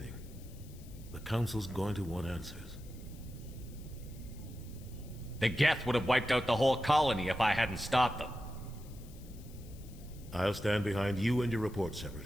The Council's going to want answers. The Geth would have wiped out the whole colony if I hadn't stopped them. I'll stand behind you and your report,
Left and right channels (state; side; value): noise; left; hiss, 23 dB below the sound